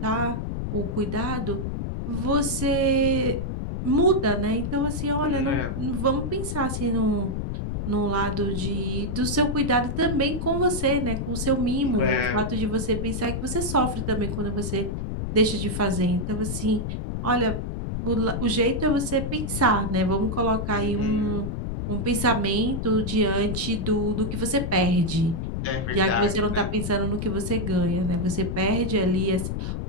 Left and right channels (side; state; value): left; noise; rumble, 3 dB below the sound